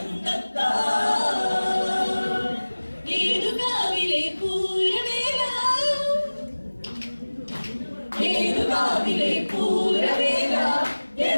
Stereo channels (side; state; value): both; inverted; correlation -1.00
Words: തത്താ ഏതുകാവിലെ പൂരവേല ഏതുകാവിലെ പൂരവേല